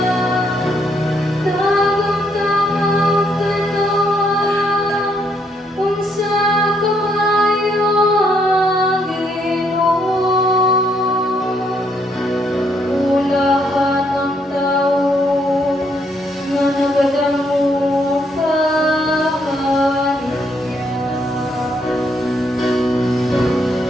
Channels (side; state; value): both; normal; correlation 0.72